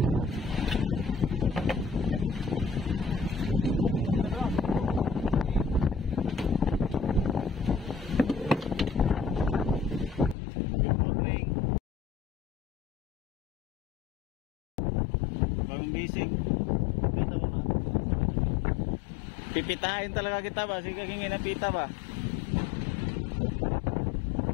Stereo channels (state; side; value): drops out; right; at 10.4 s